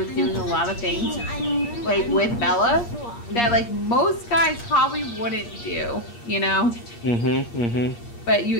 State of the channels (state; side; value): late; right; 8.5 ms